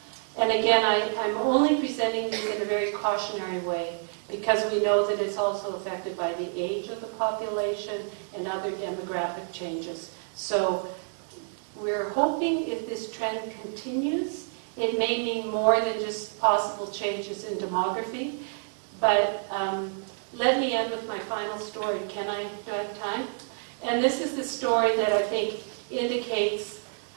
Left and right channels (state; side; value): silent; left; digital silence